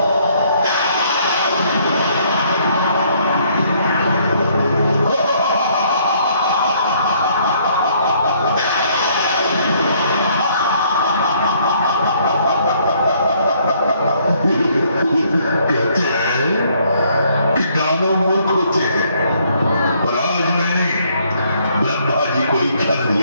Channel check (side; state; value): both; inverted; correlation -0.66